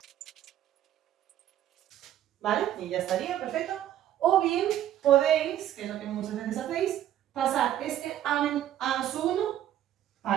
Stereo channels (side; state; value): left; quieter; 11.8 dB